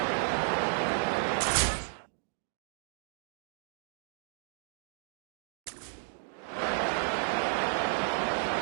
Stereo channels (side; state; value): left; silent; digital silence